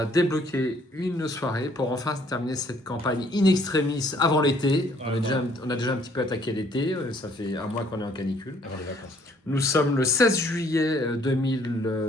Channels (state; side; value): normal; both; correlation 0.62